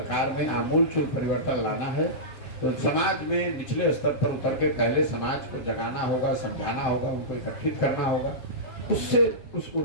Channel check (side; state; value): right; late; 7.4 ms